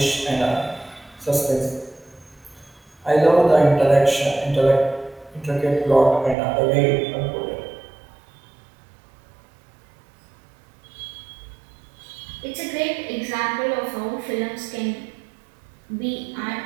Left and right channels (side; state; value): left; drops out; at 6.4 s